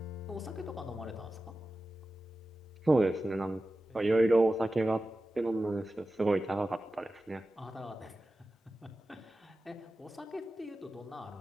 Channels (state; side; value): normal; both; correlation 0.94